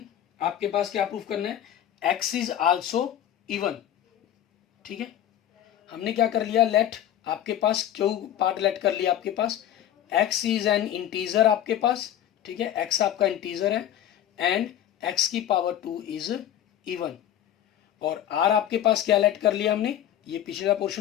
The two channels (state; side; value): quieter; right; 11.1 dB